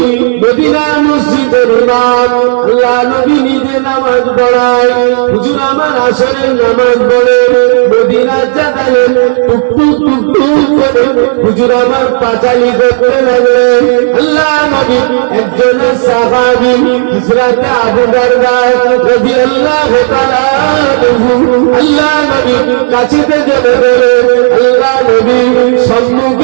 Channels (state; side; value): silent; left; 68 dB below the other